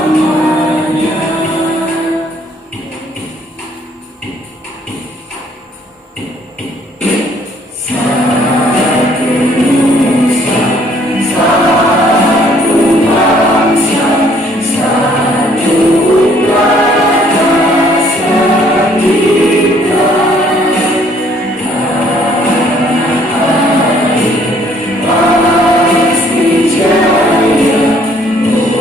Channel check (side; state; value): both; normal; correlation 0.62